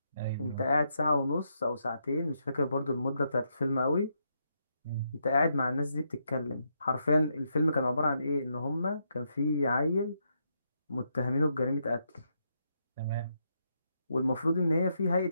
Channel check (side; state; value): both; inverted; correlation -0.79